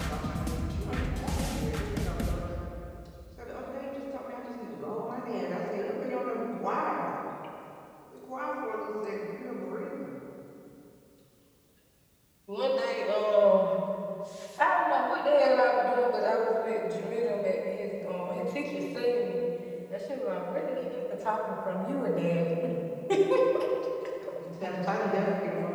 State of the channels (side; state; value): both; identical; correlation 1.00